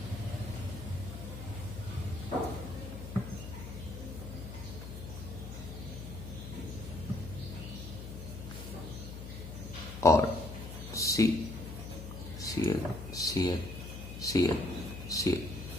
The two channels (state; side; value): noise; left; hum, 9 dB below the sound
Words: or Cl, Cl, Cl, Cl,